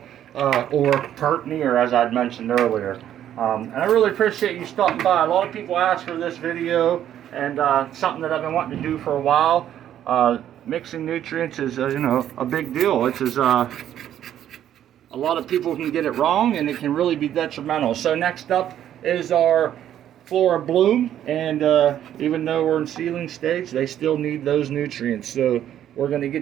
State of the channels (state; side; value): quieter; left; 10.9 dB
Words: or pert near, as I'd mentioned earlier. And I really appreciate you stopping by. A lot of people ask for this video, and something that I've been wanting to do for a while. Mixing nutrients is, you know, a big deal. It's a lot of people can get it wrong, and it can really be detrimental. So next up is our Flora Bloom, and even though we're in seedling stage, they still need those nutrients. So we're going to